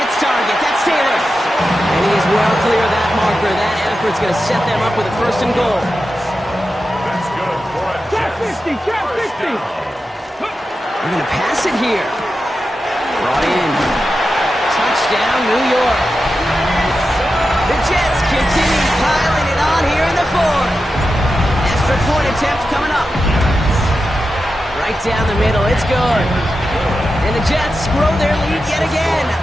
target. That's Taylor. And he is well clear of that marker. That effort's going to set them up with a 1st and goal. That's good for a Jets. Check 50. They're going to pass it here. Brought in. Touchdown, New York. The Jets continue piling it on here in the 4th. Extra point attempt coming up. Right down the middle. It's good. And the Jets grow their lead yet again.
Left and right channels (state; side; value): normal; both; correlation 0.91